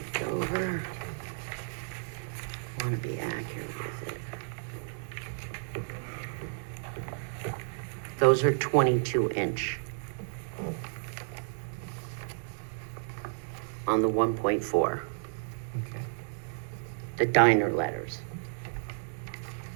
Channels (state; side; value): silent; left; digital silence